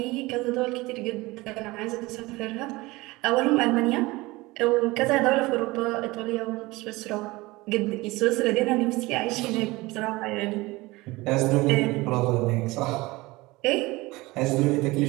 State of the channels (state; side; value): quieter; left; 21.3 dB